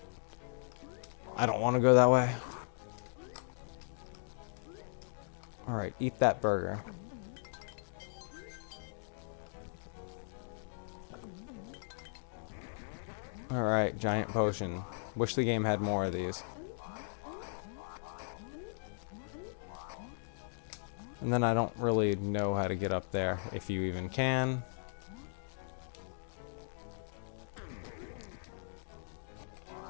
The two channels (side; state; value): right; silent; digital silence